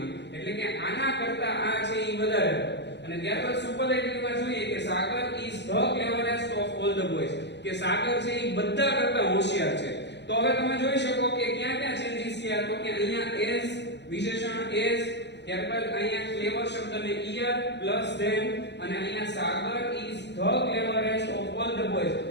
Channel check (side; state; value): right; late; 0.50 ms